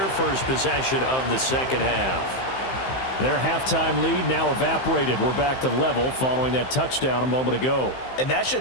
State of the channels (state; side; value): late; right; 15 ms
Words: first possession of the second half. Their halftime lead now evaporated. We're back to level following that touchdown a moment ago. And that